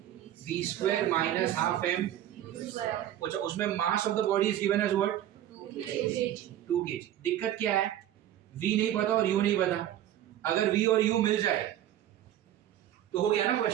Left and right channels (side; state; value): left; quieter; 12.0 dB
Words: V square minus half M. अच्छा, उसमें mass of the body is given as what, 2 kg। दिक्कत क्या है, v नहीं पता और u नहीं पता। अगर v और u मिल जाए तो हो गया ना